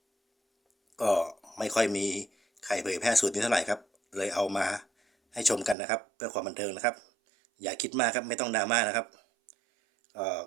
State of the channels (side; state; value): left; drops out; at 5.8 s